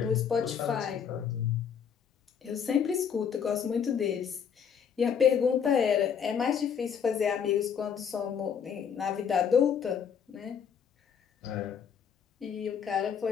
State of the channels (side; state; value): right; quieter; 7.5 dB